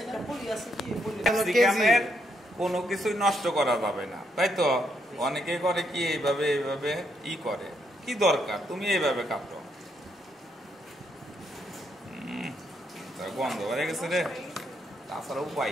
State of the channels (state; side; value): normal; both; correlation 0.76